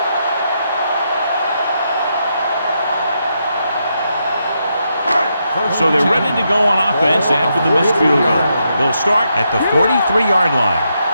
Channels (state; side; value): inverted; both; correlation -0.81